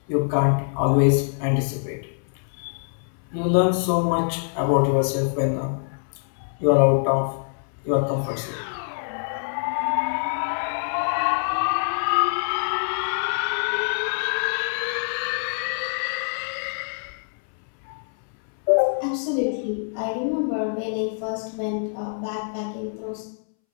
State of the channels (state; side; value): silent; right; 62 dB below the other